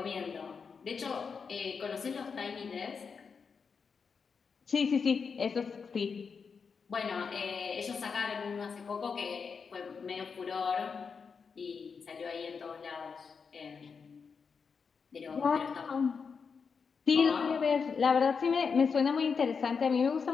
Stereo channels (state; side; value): quieter; right; 5.6 dB